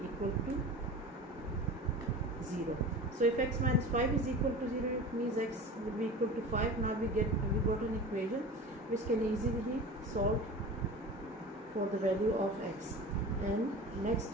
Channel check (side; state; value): both; normal; correlation 0.34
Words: to 0. So if x minus 5 is equal to 0, it means x will be equal to 5. Now we got an equation which can easily be solved for the value of x. And